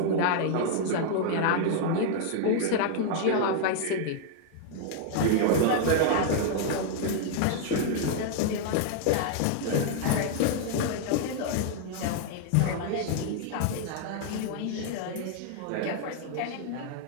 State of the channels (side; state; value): both; different; correlation 0.00